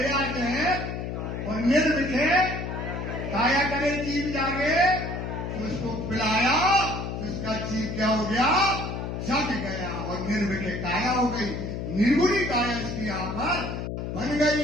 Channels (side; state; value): left; noise; hum, 4 dB below the sound